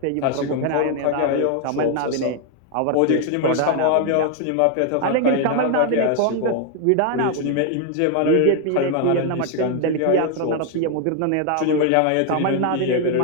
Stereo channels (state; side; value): different; both; correlation 0.00